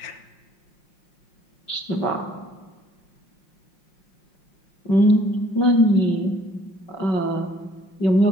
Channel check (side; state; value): right; late; 5.6 ms